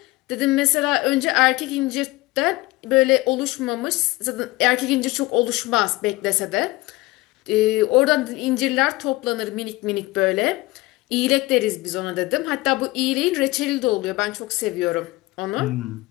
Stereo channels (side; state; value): right; quieter; 20.4 dB